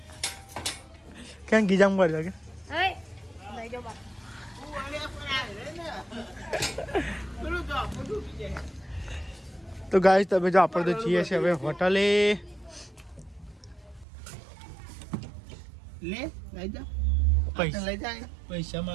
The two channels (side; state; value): left; drops out; at 14.1 s